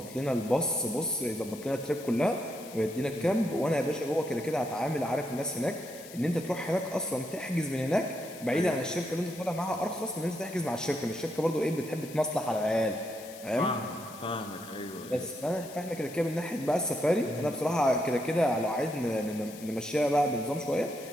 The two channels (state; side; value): noise; left; hiss, 17 dB below the sound